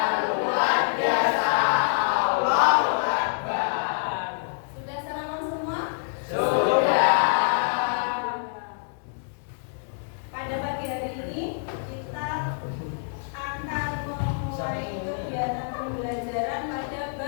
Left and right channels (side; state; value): right; silent; digital silence